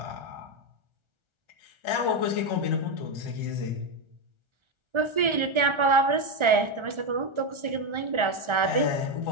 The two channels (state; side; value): late; left; 1.4 ms